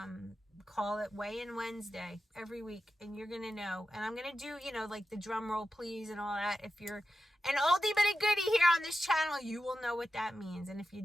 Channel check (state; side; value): normal; both; correlation 0.91